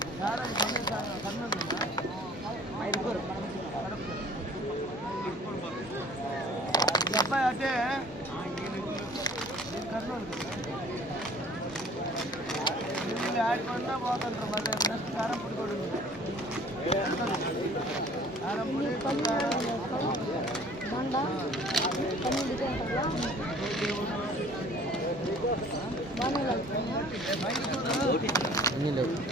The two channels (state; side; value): normal; both; correlation 0.51